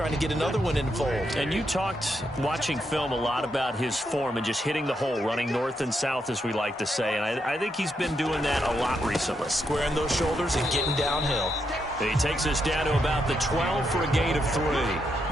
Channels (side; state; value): both; normal; correlation 0.81